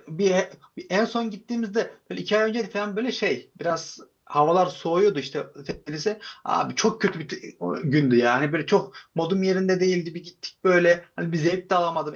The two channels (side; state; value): both; identical; correlation 1.00